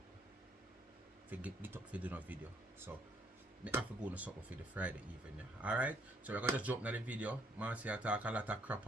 If you get up for do no video. So, I have to go to something for the Friday evening. Yeah. Alright? So, we're going to just jump into the video. Marcia talk a lot of crap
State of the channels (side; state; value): both; normal; correlation 0.68